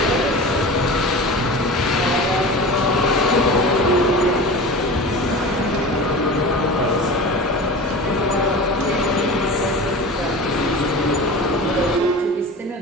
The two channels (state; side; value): normal; both; correlation 0.33